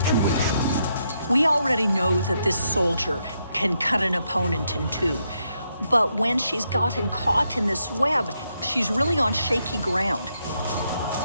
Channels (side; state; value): both; inverted; correlation -0.79